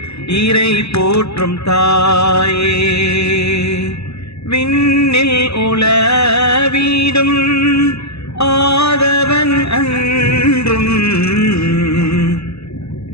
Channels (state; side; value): late; right; 0.79 ms